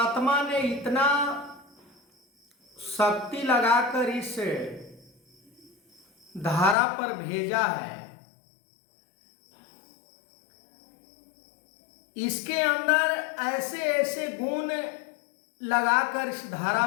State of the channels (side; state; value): right; drops out; at 6.8 s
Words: ने इतना शक्ति लगाकर इस धारा पर भेजा है, इसके अंदर ऐसे ऐसे गुण लगाकर इस धारा